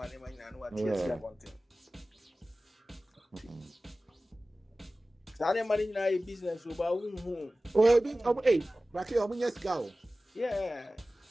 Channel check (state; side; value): normal; both; correlation 0.97